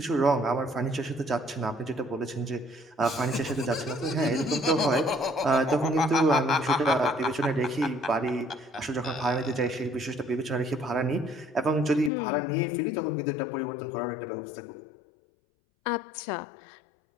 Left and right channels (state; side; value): drops out; right; at 12.1 s